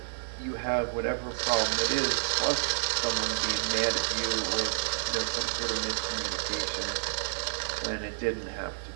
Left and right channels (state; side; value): silent; left; 58 dB below the other